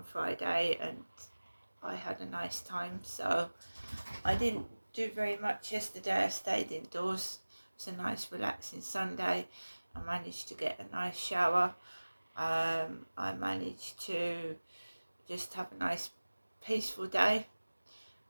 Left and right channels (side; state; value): both; inverted; correlation -1.00